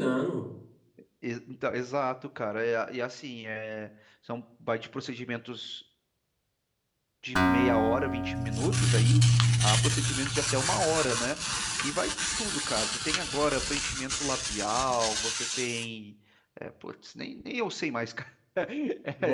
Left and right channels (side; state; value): both; identical; correlation 1.00